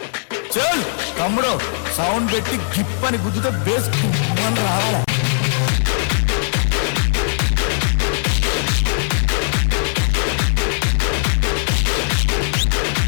తమ్ముడు సౌండ్ పెట్టి గిప్ అని గుద్దుతో బేస్ రావాలి.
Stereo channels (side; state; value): right; silent; 65 dB below the other